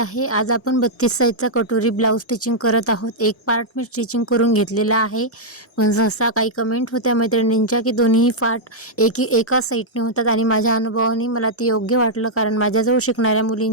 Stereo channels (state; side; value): normal; both; correlation -0.06